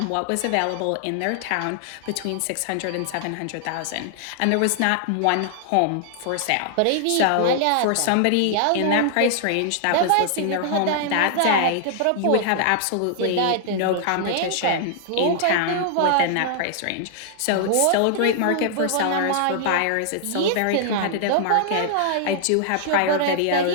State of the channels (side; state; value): both; different; correlation -0.01